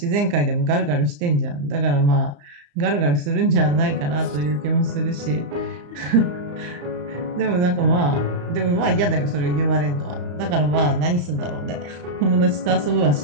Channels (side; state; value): left; late; 34 ms